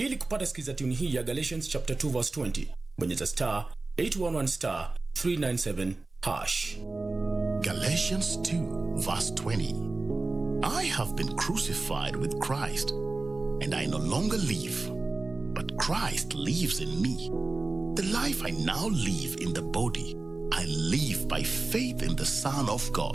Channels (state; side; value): quieter; left; 3.4 dB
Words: kupata skiza tune hii ya Galatians chapter 2 verse 20, bonyeza *811*397#. Galatians 2 verse 20. I have been crucified with Christ, and I no longer live, but Christ lives in me. The life I now live in the body, I live by faith in the Son of